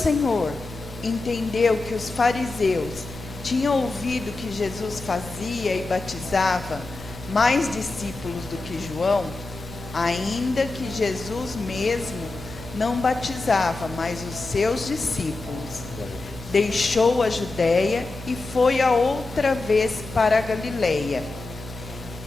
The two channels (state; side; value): quieter; right; 3.3 dB